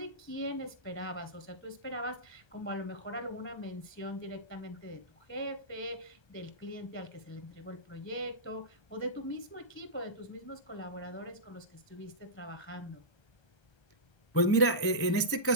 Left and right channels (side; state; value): right; late; 1.3 ms